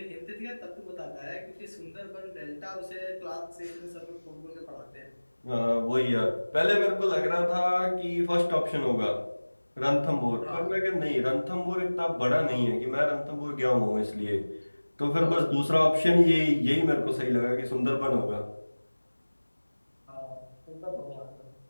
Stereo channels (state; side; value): inverted; both; correlation -1.00